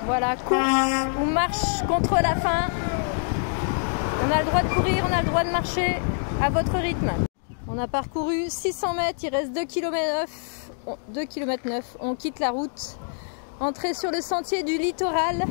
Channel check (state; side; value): silent; right; digital silence